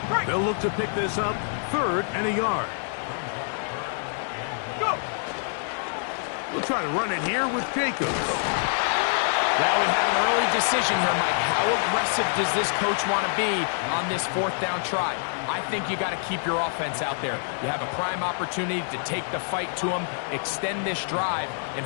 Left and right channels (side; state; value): right; silent; digital silence